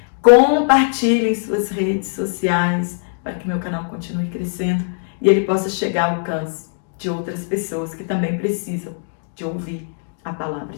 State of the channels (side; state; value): right; silent; digital silence